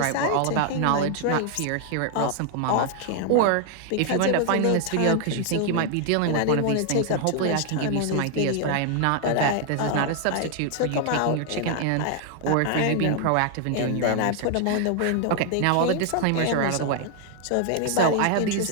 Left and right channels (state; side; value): different; both; correlation 0.00